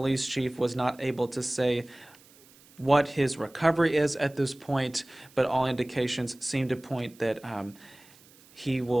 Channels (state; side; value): noise; right; hiss, 26 dB below the sound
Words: chief was not able to say what his recovery is at this point, but all indications seem to point that he